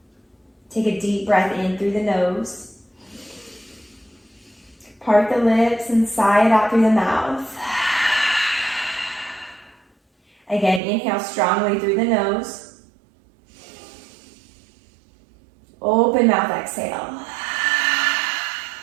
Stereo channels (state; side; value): drops out; left; at 10.8 s